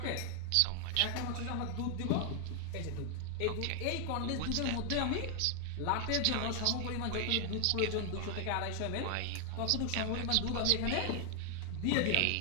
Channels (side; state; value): both; different; correlation 0.00